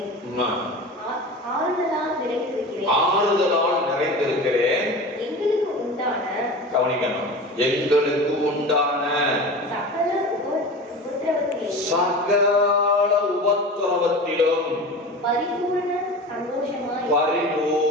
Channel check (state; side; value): normal; both; correlation 0.32